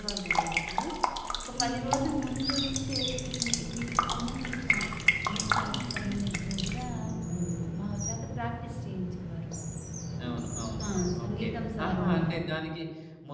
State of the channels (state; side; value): identical; both; correlation 1.00